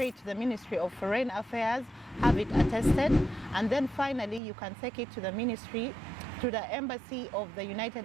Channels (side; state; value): left; drops out; at 4.4 s